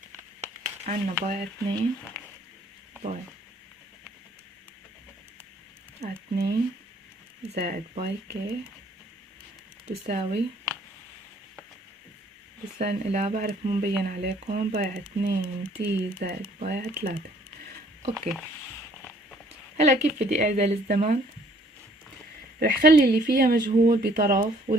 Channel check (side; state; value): both; normal; correlation 0.60